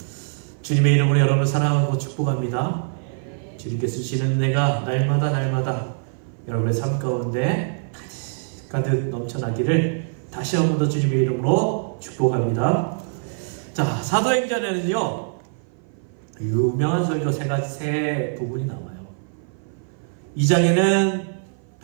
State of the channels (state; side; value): silent; left; 56 dB below the other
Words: 주님의 이름으로 여러분을 사랑하고 축복합니다. 주님께서 주시는 은혜가 날마다 여러분의 삶 가운데 가득 넘쳐나기를 다시 한 번 더 주님의 이름으로 축복합니다. 자, 사도행전에는요 유명한 설교 세 부분이 나와요. 2장에는